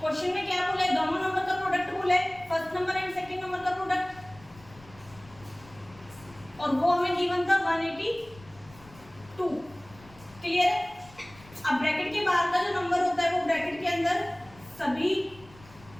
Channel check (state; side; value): noise; left; rumble, 23 dB below the sound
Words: में क्या बोला है? दोनों नंबर का प्रोडक्ट बोला है, first number and second number का प्रोडक्ट, और वो हमें गिवन था 182। क्लियर है? अब ब्रैकेट के बाहर का जो नंबर होता है वो ब्रैकेट के अंदर सभी